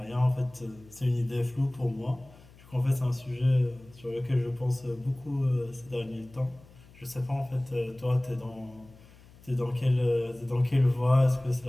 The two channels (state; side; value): noise; left; hum, 24 dB below the sound